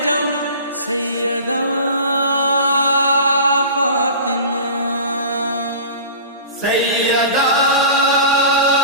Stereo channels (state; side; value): inverted; both; correlation -0.37